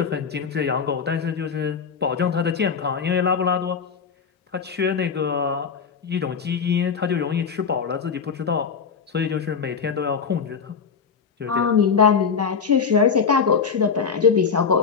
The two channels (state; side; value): quieter; right; 6.1 dB